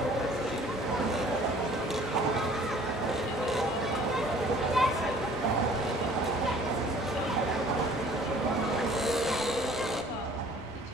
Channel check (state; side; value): normal; both; correlation 0.53